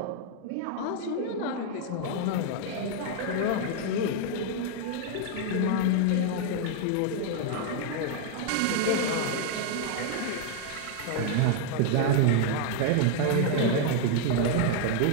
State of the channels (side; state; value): both; different; correlation 0.00